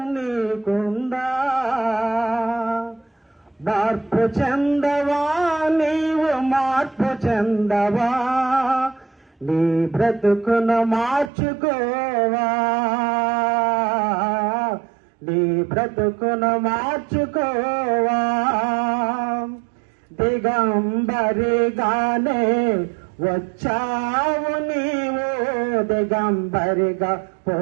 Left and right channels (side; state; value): left; drops out; at 11.3 s